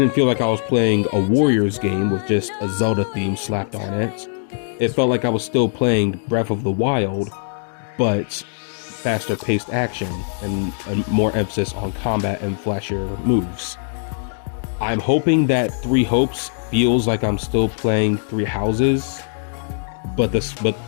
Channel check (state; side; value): silent; right; digital silence